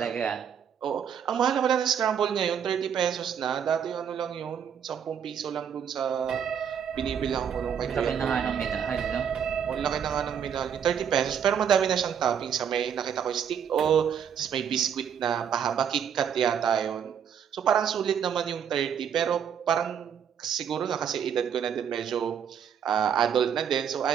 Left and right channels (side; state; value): left; quieter; 8.1 dB